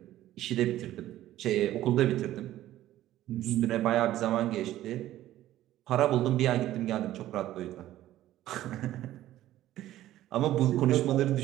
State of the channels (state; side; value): quieter; left; 14.0 dB